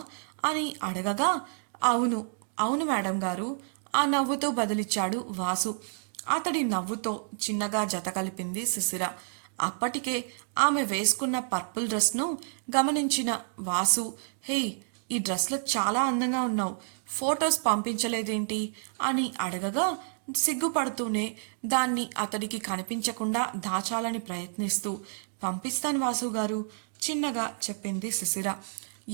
అని అడగగా అవును అవును మేడం గారు ఆ నవ్వుతో బదులిచ్చాడు వాసు. అతడి నవ్వుతో చిన్నగా జత కలిపింది శిశిర. అప్పటికే ఆమె వేసుకున్న పర్పుల్ డ్రెస్ను గమనించిన వాసు హే ఈ డ్రెస్లో చాలా అందంగా ఉన్నావు, ఫొటోస్ పంపించలేదేంటి అని అడగగా సిగ్గుపడుతూనే దాన్ని అతడికి కనిపించకుండా దాచాలని ప్రయత్నిస్తూ పంపిస్తాను వాసు గారు చిన్నగా చెప్పింది శిశిర.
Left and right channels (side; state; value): left; silent; digital silence